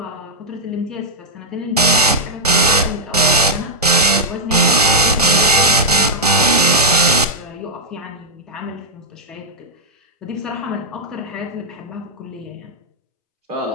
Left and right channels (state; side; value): normal; both; correlation -0.06